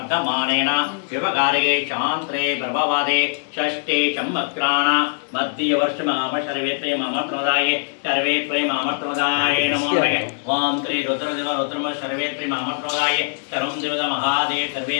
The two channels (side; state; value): right; silent; 65 dB below the other